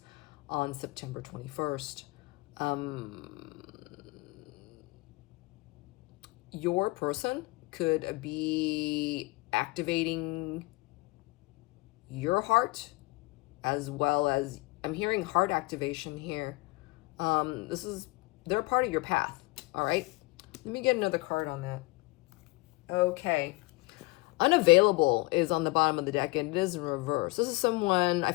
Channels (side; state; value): right; quieter; 23.4 dB